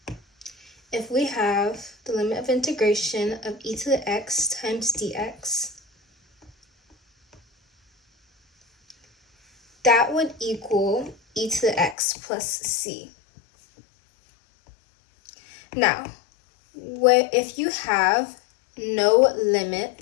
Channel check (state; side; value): drops out; right; at 12.0 s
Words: if we have the limit of integration of e to the x times dx, that would equal e to the x plus c. Now, if you have no